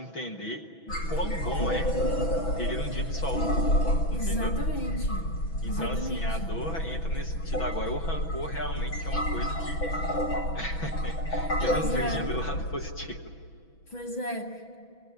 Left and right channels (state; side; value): late; right; 6.1 ms